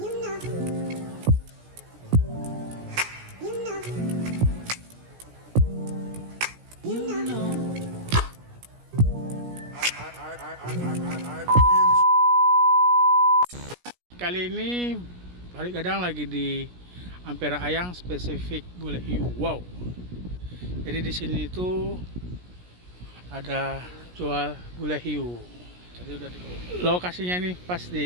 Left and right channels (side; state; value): left; late; 17 ms